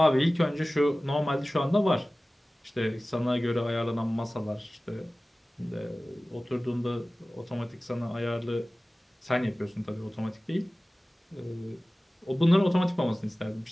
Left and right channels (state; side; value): normal; both; correlation 0.97